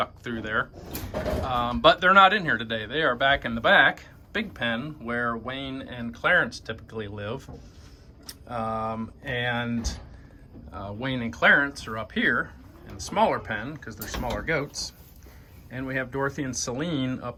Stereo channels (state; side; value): identical; both; correlation 1.00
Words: through there. But they're not in here today. They are back in the back, big pen, where Wayne and Clarence typically live. Wayne and Clarence are up here in the smaller pen because they're smaller goats, and we have Dorothy and Celine